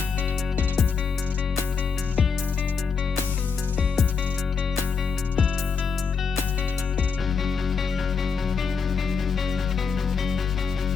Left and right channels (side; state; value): right; quieter; 5.6 dB